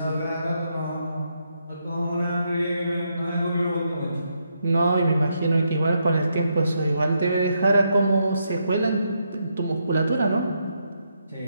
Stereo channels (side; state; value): both; inverted; correlation -0.79